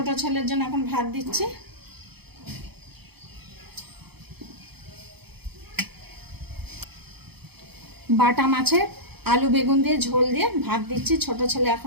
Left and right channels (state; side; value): late; left; 0.97 ms